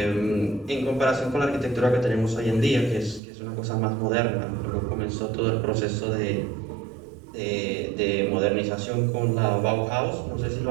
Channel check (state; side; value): drops out; left; at 3.2 s